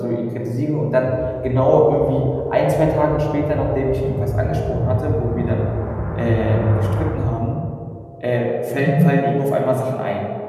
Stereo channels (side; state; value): both; identical; correlation 1.00